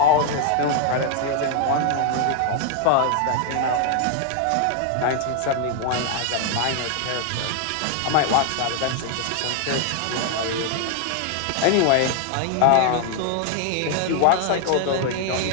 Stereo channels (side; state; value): both; different; correlation 0.00